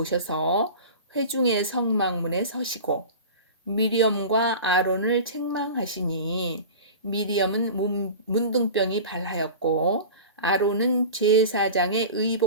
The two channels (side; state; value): both; inverted; correlation -0.34